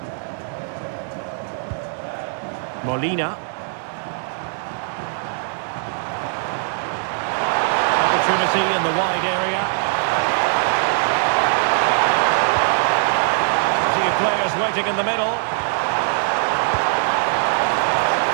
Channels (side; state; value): left; silent; 65 dB below the other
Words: Molina. Opportunity in the wide area. Two players waiting in the middle.